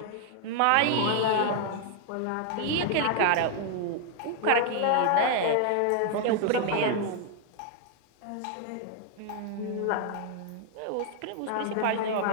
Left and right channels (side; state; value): both; different; correlation 0.00